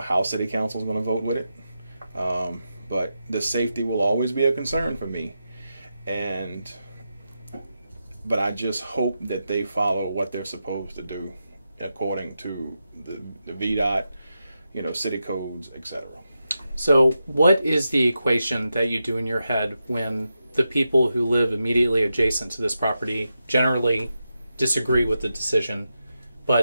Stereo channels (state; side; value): inverted; both; correlation -0.88